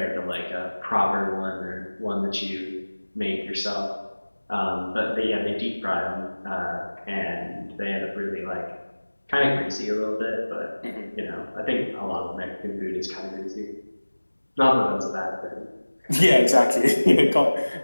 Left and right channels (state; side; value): inverted; both; correlation -1.00